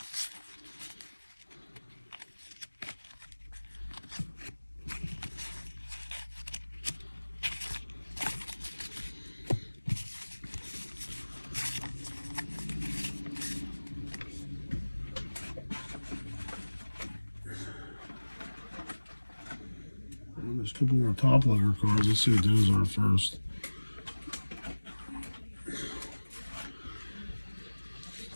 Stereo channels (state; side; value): inverted; both; correlation -1.00